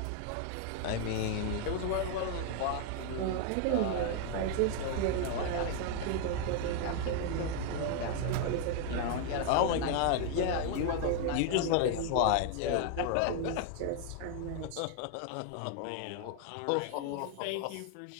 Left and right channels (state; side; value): different; both; correlation 0.01